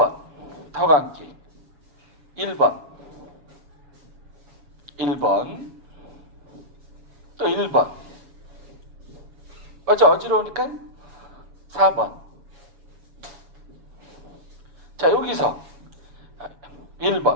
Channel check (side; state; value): left; late; 6.9 ms